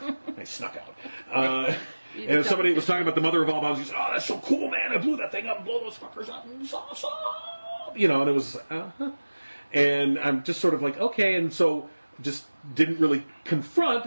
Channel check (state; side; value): inverted; both; correlation -1.00